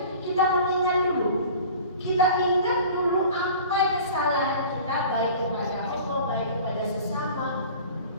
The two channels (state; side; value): inverted; both; correlation -0.43